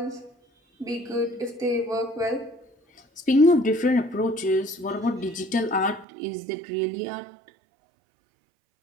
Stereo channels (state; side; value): drops out; left; at 6.1 s